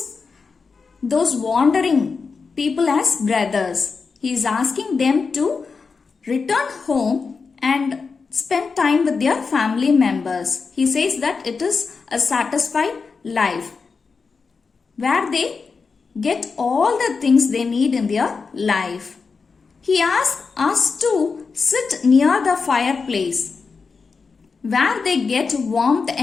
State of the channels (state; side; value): quieter; right; 4.9 dB